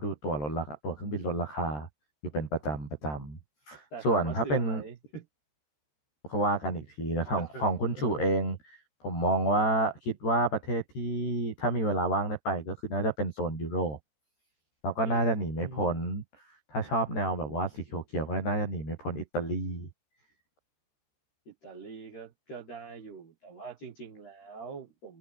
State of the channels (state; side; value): late; right; 13 ms